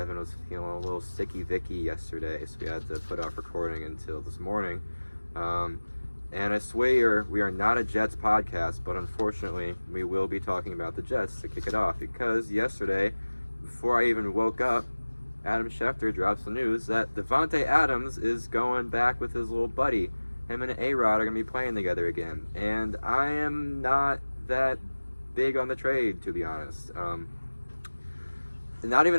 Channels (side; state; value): both; inverted; correlation -1.00